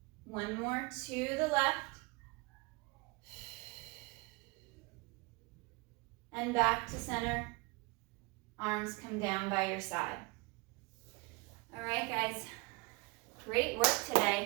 One more to the left. And back to center. Arms come down by your side. All right, guys. Great work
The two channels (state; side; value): quieter; left; 27.5 dB